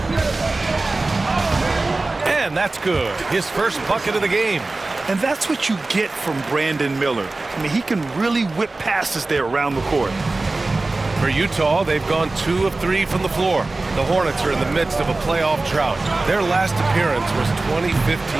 And that's good. His first bucket of the game. And that's what you get from Brandon Miller. I mean, he can really whip passes there around the court. For Utah, they've gone 2 of 3 from the floor. The Hornets are in the midst of a playoff drought. Their last appearance was 2015,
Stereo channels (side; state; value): left; quieter; 3.2 dB